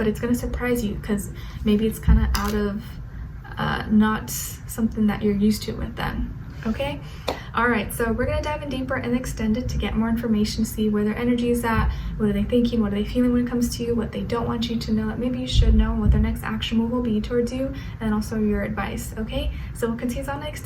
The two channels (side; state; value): both; identical; correlation 1.00